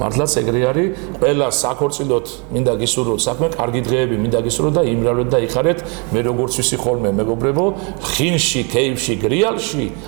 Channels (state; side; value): quieter; left; 34.2 dB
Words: მართლაც ეგრე არის ყველა საქორწილოდ მინდა გისურვოთ საქმე კარგი დღეები მინდა გისურვოთ და იმრავლეთ და იხარეთ მე როგორც ვიცი ხოლმე მეგობრებო ხინში ქეიფში გრიალში